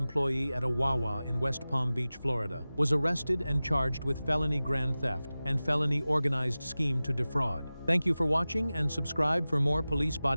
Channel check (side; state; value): both; inverted; correlation -0.97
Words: at a Wawa in West Palm Beach, Florida, was arrested and charged with felony grand theft and felony organized scheme to defraud. Thank you for watching and subscribe for more police